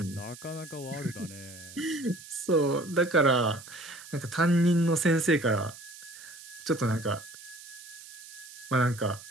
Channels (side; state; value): right; noise; hiss, 16 dB below the sound